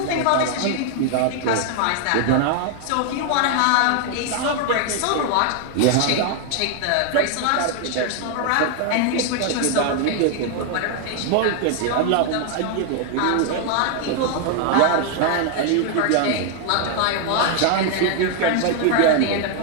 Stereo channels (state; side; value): different; both; correlation 0.00